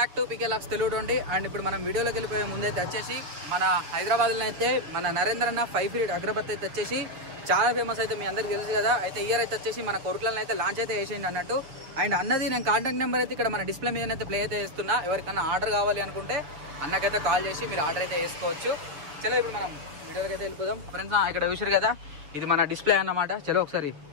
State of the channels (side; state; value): left; late; 6.7 ms